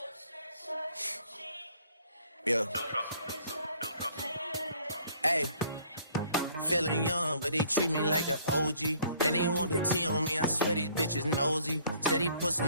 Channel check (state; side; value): inverted; both; correlation -0.59